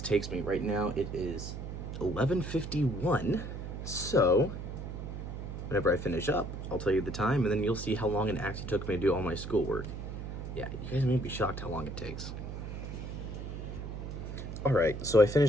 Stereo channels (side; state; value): right; noise; hum, 7 dB below the sound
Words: takes me. Right now, it is 11:51, so whenever I finish up, I'll tell you the time, and then you'll see how long it actually took me to do all my schoolwork. Yeah, you guys may be shocked how long it takes. Alright, so I